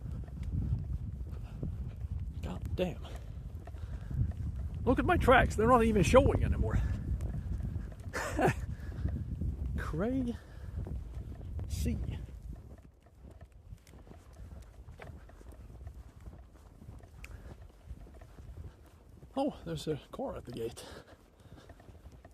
God damn. Look at my tracks, they're not even showing anymore. Crazy. Oh, there's a car at the gate.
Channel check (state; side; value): identical; both; correlation 1.00